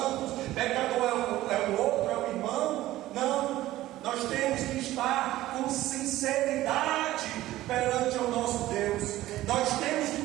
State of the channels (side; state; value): left; quieter; 15.6 dB